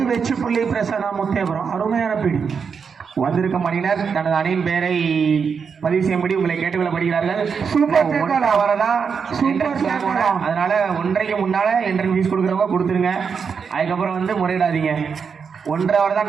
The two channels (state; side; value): quieter; left; 6.1 dB